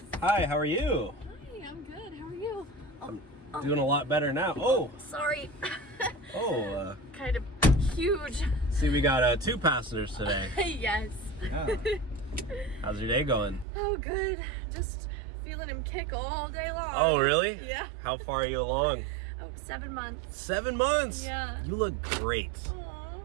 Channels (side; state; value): left; drops out; at 13.7 s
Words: Hi, how are you? Hi, I'm good. How are you? I'm doing a lot better now. Oh! Sorry. Oh, Kind of huge. see, we got 2 passengers today. Yes. Yeah. How's your day going? Oh, good. Just feeling him kick all day long. Oh, really? Yeah. How far are you along? Oh, 7 months. 7 months? Yeah. You look great Aw,